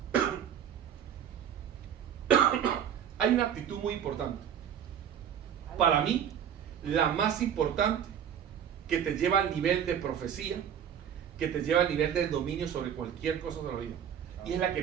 Hay una actitud muy importante, para mí la más importante, que te lleva al nivel de profecía, que te lleva al nivel del dominio sobre cualquier cosa de la vida, y es la que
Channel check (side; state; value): left; quieter; 9.0 dB